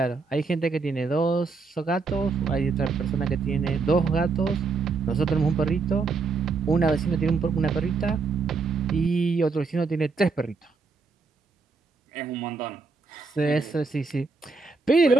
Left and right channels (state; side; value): quieter; left; 4.4 dB